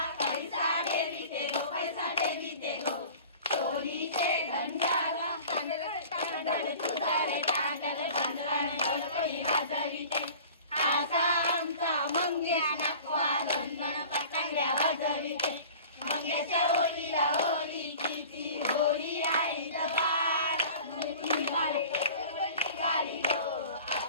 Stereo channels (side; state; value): both; inverted; correlation -0.42